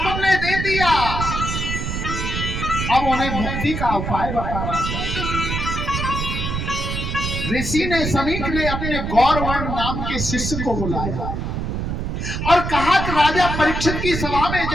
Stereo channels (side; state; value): right; noise; rumble, 3 dB below the sound